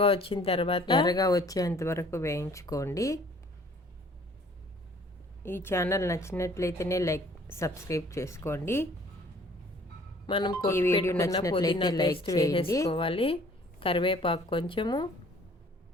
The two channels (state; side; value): normal; both; correlation 0.55